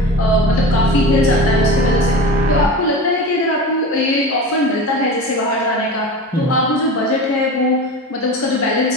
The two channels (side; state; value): both; normal; correlation 0.31